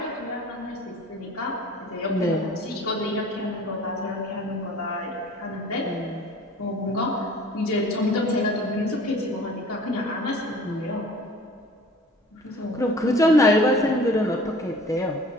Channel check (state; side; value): normal; both; correlation 0.47